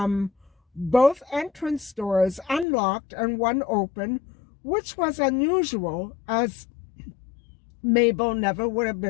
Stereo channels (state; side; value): drops out; right; at 2.7 s